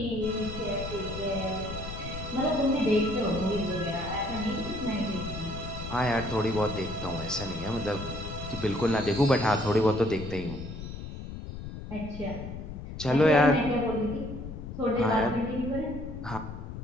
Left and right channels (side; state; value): left; noise; rumble, 9 dB below the sound